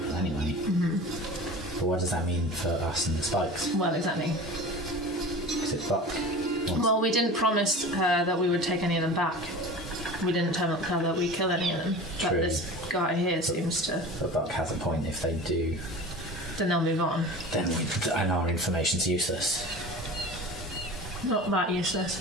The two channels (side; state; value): both; normal; correlation 0.36